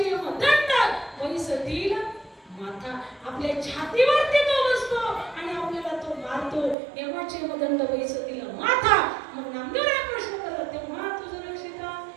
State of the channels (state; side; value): drops out; left; at 6.8 s